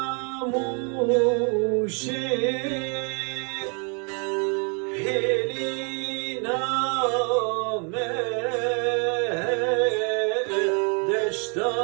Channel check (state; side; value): quieter; left; 37.3 dB